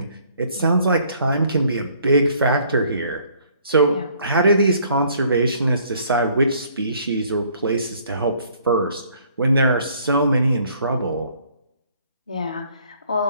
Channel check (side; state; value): both; inverted; correlation -0.61